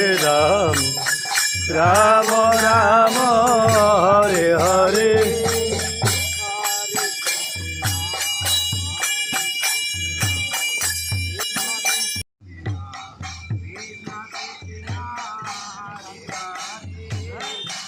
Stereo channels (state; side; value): identical; both; correlation 1.00